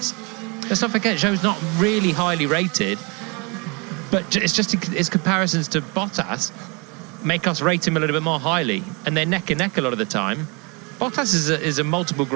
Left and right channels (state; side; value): quieter; left; 30.2 dB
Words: Let's not forget, Zhou's not really highly rated, but it's just his comparisons to Bottas make us rate him a little bit more highly, and they're neck and neck a lot of the time. Bottas is a multiple